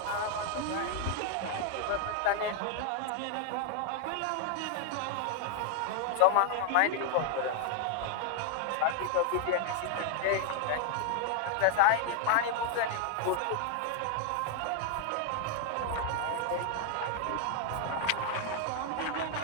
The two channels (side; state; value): both; different; correlation 0.00